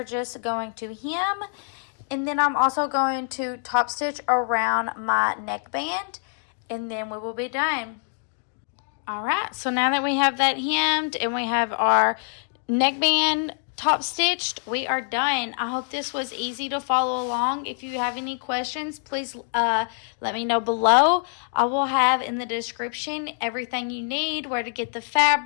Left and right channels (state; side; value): silent; right; 59 dB below the other